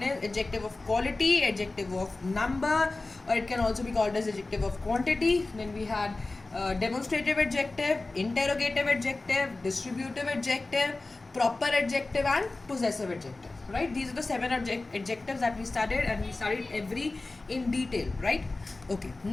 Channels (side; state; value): right; quieter; 3.2 dB